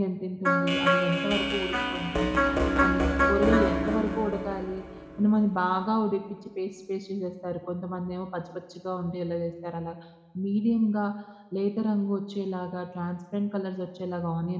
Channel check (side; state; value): both; identical; correlation 1.00